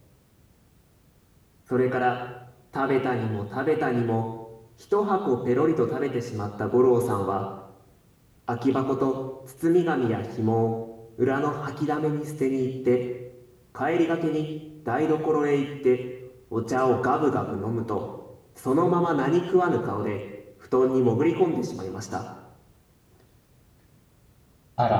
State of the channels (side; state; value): both; identical; correlation 1.00